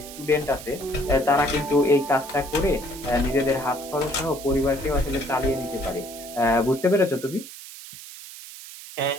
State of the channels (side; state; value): right; noise; hiss, 14 dB below the sound